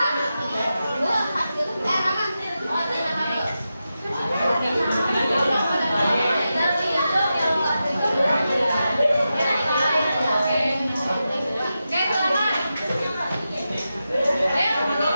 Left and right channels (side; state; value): both; inverted; correlation -0.90